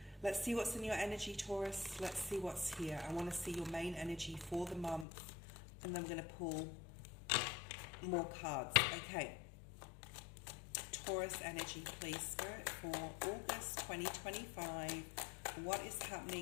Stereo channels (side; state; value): right; drops out; at 5.1 s